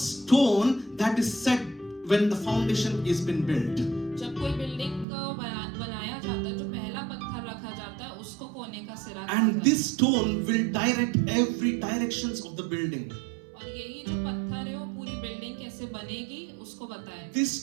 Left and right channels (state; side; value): drops out; left; at 5.1 s